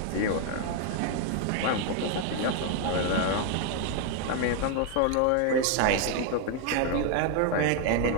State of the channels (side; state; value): both; different; correlation 0.00